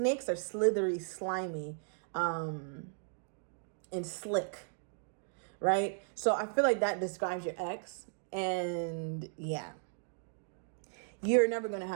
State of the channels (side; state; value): left; silent; digital silence